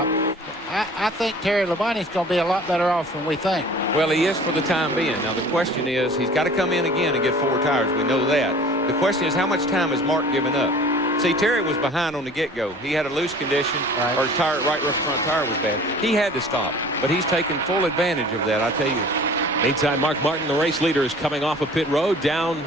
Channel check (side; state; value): both; normal; correlation 0.46